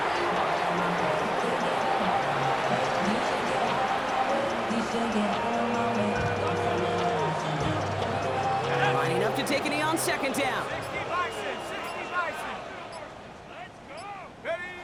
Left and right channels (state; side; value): identical; both; correlation 1.00